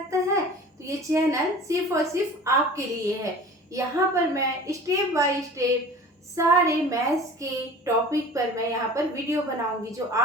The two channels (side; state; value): both; normal; correlation 0.41